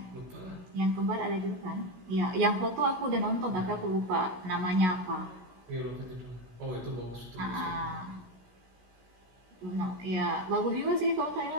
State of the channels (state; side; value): late; left; 16 ms